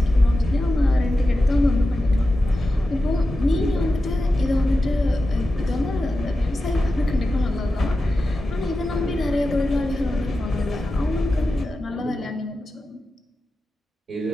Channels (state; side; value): normal; both; correlation 0.92